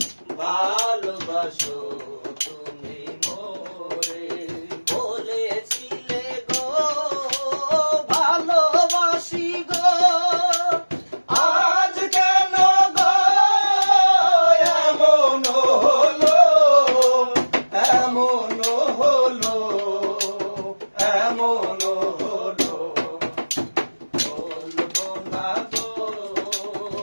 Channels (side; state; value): both; inverted; correlation -1.00